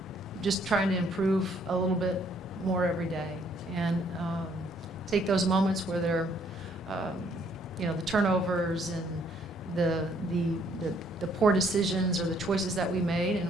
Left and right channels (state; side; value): normal; both; correlation 0.66